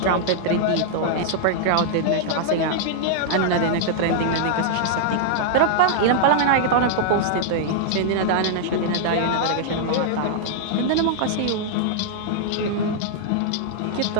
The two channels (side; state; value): both; different; correlation -0.01